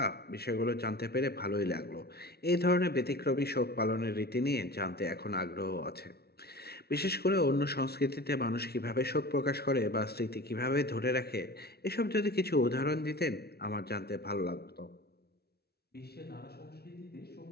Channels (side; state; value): right; late; 0.46 ms